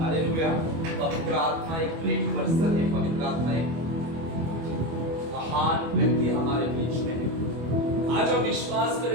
पवित्र आत्मा एक ग्रेट पर्सन है, पवित्र आत्मा एक महान व्यक्ति हमारे बीच में है। आज हम विश्वास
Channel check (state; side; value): late; left; 25 ms